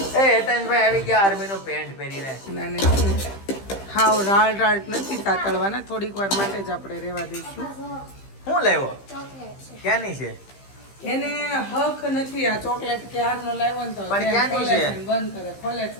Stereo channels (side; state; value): right; late; 15 ms